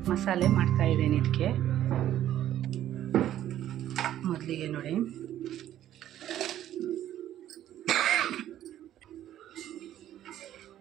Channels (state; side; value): quieter; left; 12.1 dB